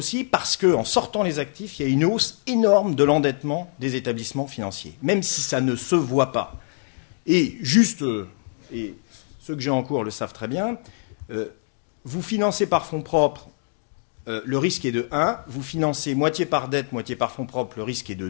parce qu'en sortant les actifs, il y a une hausse énorme de l'endettement des établissements financiers, même si ça ne se voit pas. Et juste, et ceux que j'ai en cours le savent très bien, vous financez par fonds propres, le risque est de 1. Vous financez moitié par dette, moitié par fonds propres, le risque est de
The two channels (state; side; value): silent; right; digital silence